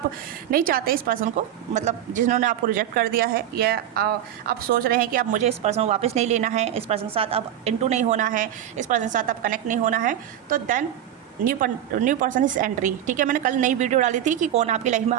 नहीं चाहते इस पर्सन को, मतलब जिन्होंने आपको रिजेक्ट कर दिया है, या आप सोच रहे हैं कि अब मुझे इस पर्सन को वापस नहीं लेना है, इस पर्सन के साथ अब इनटू नहीं होना है, इस पर्सन के साथ अब कनेक्ट नहीं होना है, तो देन न्यू पर्सन इस एंट्री, ठीक है। मैंने कल नई वीडियो डाली थी कि कौन आपकी लाइफ में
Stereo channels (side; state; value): left; quieter; 11.0 dB